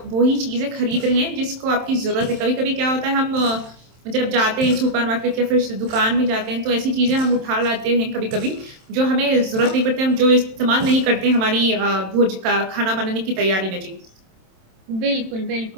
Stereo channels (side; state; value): left; late; 27 ms